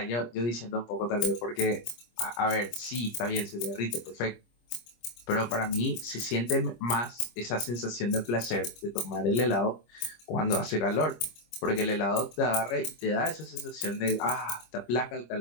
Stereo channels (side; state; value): right; late; 25 ms